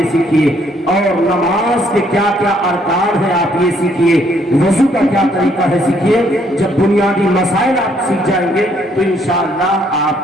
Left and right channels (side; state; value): both; normal; correlation 0.68